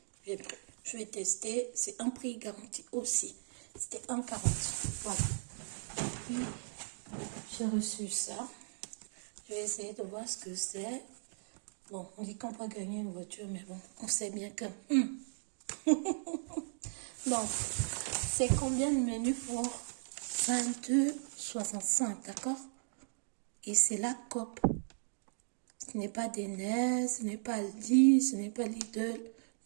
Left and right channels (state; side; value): silent; left; digital silence